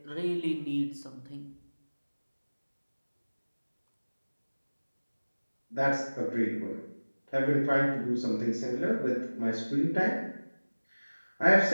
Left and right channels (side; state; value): both; inverted; correlation -1.00